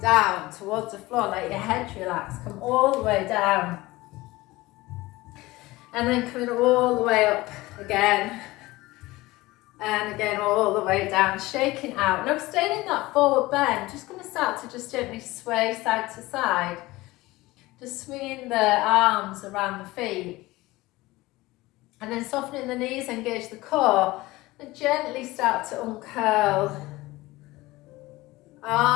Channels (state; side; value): quieter; right; 19.7 dB